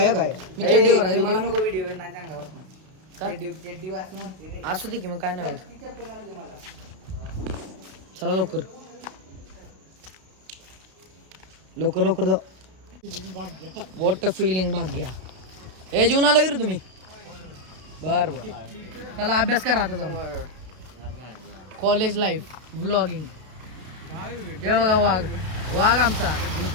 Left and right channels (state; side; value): late; left; 32 ms